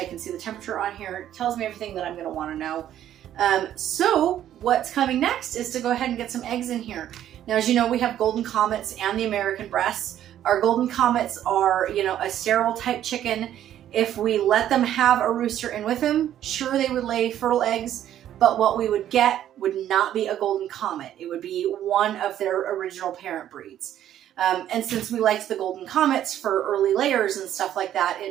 can see the temperature on here. It tells me everything that I'm going to want to know. So what's coming next is to go ahead and get some eggs in here. Now, as you know, we have Golden Comets and the American breasts. Our Golden Comets are, a sterile type chicken. If we let them have a rooster in with them, sure, they would lay fertile eggs, but what we would get would not be a Golden Comet. It would be one of their original parent breeds. And since we liked the Golden Comets for early layers and stuff like that,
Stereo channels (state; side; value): quieter; left; 11.4 dB